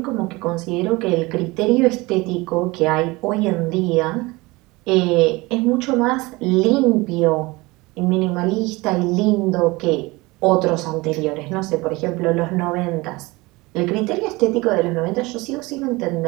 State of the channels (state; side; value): quieter; left; 22.7 dB